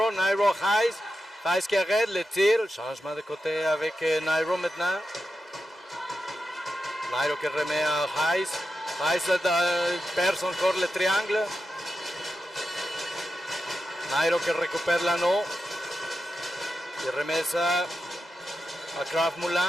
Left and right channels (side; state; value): both; normal; correlation 0.89